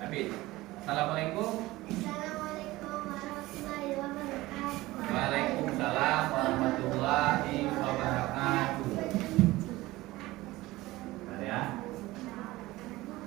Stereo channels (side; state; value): left; quieter; 18.7 dB